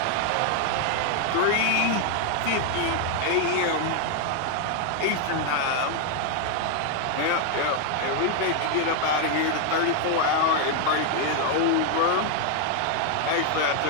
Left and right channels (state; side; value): different; both; correlation 0.00